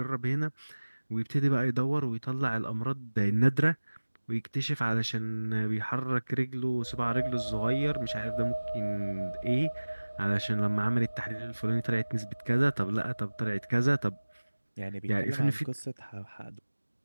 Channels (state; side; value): inverted; both; correlation -1.00